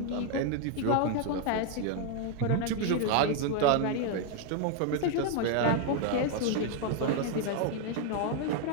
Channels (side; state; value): both; different; correlation 0.00